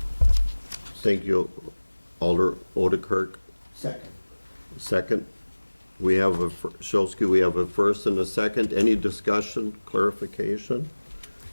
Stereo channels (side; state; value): both; inverted; correlation -1.00